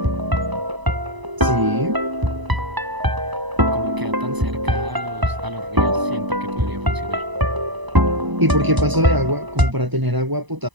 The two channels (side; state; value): left; late; 1.0 ms